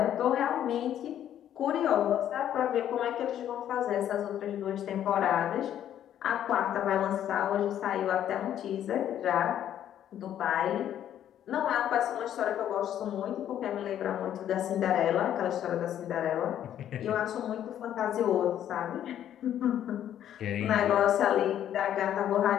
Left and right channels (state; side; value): quieter; right; 10.7 dB